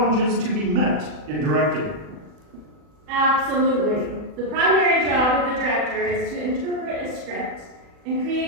to be met in directing. Absolutely. The primary job of the director is to interpret a script and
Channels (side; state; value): left; late; 40 ms